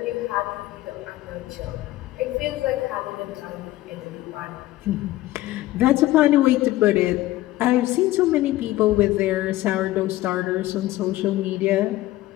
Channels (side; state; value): right; quieter; 16.4 dB